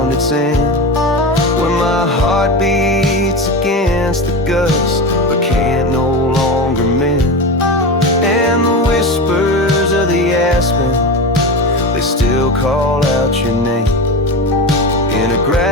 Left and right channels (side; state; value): both; normal; correlation 0.23